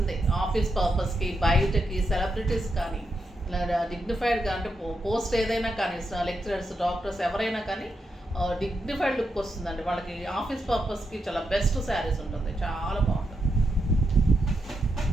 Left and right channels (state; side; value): normal; both; correlation 0.84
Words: ఆఫీస్ పర్పస్కి, బయటకి, సెలబ్రిటీస్ కానీ, ఇలా డిగ్నిఫైడ్గా అంటే పోస్ట్ ఏదైనా కానీ, లెక్చరర్స్, డాక్టర్స్ ఎవరైనా కానీ డిగ్నిఫైడ్ లుక్ వస్తుందండి వాళ్ళకి. ఆఫీస్ పర్పస్కి చాలా బెస్ట్ శారీస్ ఉంటుంది, చాలా బాగుంటుంది.